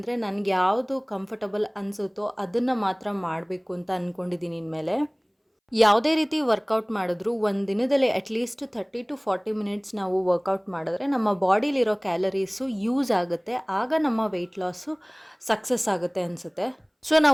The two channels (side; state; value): both; identical; correlation 1.00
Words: ನನಗೆ ಯಾವುದು ಕಂಫರ್ಟಬಲ್ ಅನಿಸುತ್ತೋ ಅದನ್ನು ಮಾತ್ರ ಮಾಡಬೇಕು ಅಂತ ಅಂದ್ಕೊಂಡಿದ್ದೀನಿ ಇನ್ಮೇಲೆ. ಯಾವುದೇ ರೀತಿ ವರ್ಕೌಟ್ ಮಾಡಿದ್ರು ಒಂದು ದಿನದಲ್ಲಿ ಅಟ್ಲೀಸ್ಟ್ 30 to 40 ಮಿನಿಟ್ಸ್ ನಾವು ವರ್ಕೌಟ್ ಮಾಡಿದ್ರೆ ನಮ್ಮ ಬಾಡಿಲಿರೋ ಕ್ಯಾಲರೀಸು ಯೂಸ್ ಆಗುತ್ತೆ. ಆಗ ನಮ್ಮ ವೆಯ್ಟ್ ಲಾಸು ಸಕ್ಸಸ್ ಆಗುತ್ತೆ ಅನಿಸುತ್ತೆ. ಸೊ